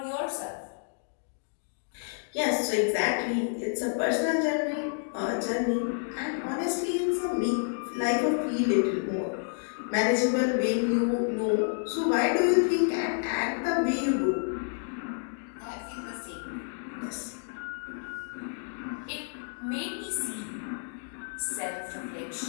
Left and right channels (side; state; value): right; silent; digital silence